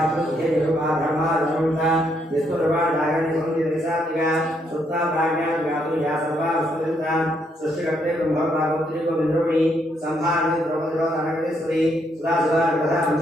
धर्माधर्मता निष्ठुरवाणागणि संधिनिसात्मिका सुप्ता प्राज्ञान व्याप्तिया सर्वा वस्तुनिता सृष्टिकर्ते ब्रह्मभागवत्री गोविन्दरूपिणी संभारणी द्रौपदीरोधनगणेश्वरी सुरासुरार्कथा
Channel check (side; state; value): both; normal; correlation 0.74